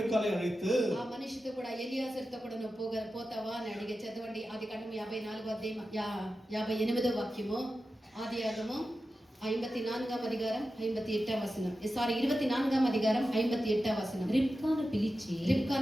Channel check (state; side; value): normal; both; correlation 0.92